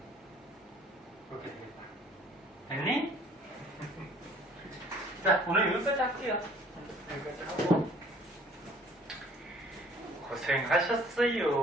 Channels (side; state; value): both; normal; correlation 0.54